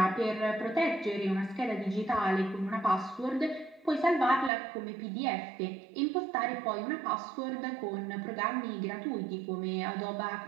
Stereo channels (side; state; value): left; drops out; at 4.5 s